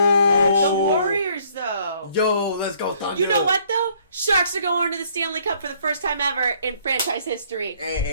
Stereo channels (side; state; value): both; inverted; correlation -0.63